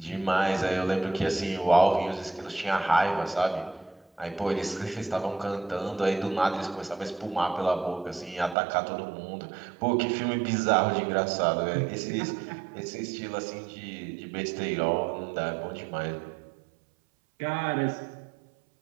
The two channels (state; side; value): drops out; left; at 8.6 s